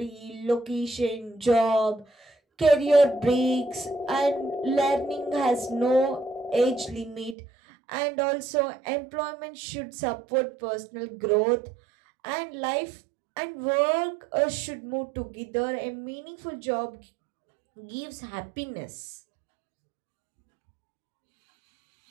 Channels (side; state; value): left; drops out; at 7.4 s